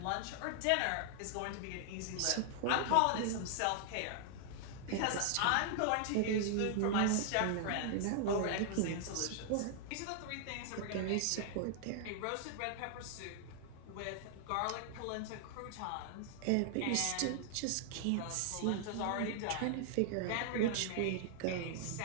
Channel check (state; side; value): different; both; correlation 0.00